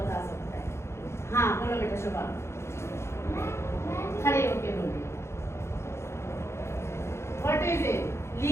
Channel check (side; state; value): right; late; 0.13 ms